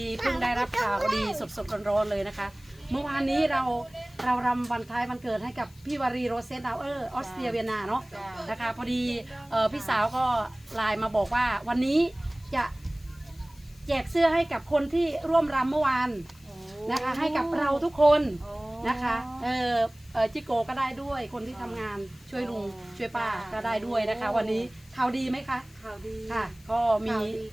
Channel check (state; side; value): noise; left; hiss, 27 dB below the sound